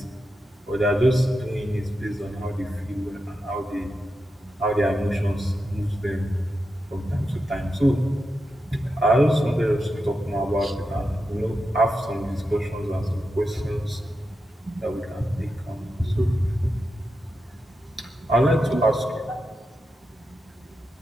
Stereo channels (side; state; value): both; normal; correlation 0.88